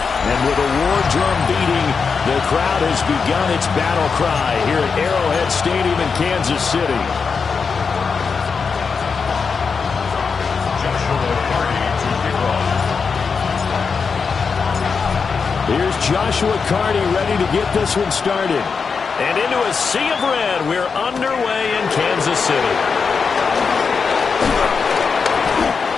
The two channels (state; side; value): quieter; right; 5.4 dB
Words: And with a war drum beating, the crowd has begun its battle cry here at Arrowhead Stadium in Kansas City. Here's Joshua Carney ready to get this one started. And into a sea of red, we're underway in Kansas City.